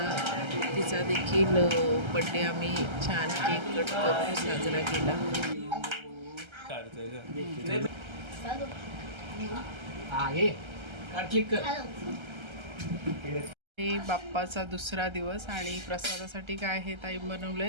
तिचा देखील बड्डे आम्ही छान केक कट करून साजरा केला. हे बाप्पाचा दुसरा दिवस आणि प्रसादासाठी काय हे ताई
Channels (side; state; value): left; late; 1.3 ms